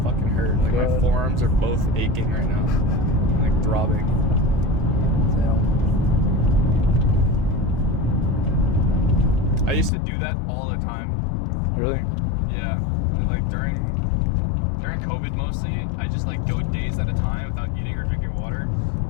fucking hurt. Like my God. forearms are both aching right now. Like throbbing. Damn. I used to do that all the time. Really? Yeah. Like during COVID mostly, I just like go days at a time without eating or drinking water.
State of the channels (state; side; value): drops out; right; at 9.9 s